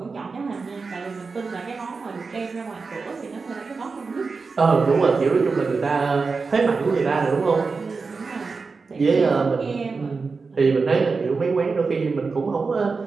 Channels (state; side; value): quieter; left; 4.5 dB